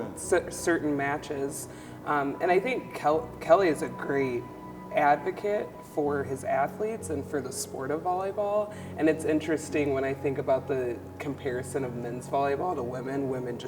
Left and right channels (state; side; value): identical; both; correlation 1.00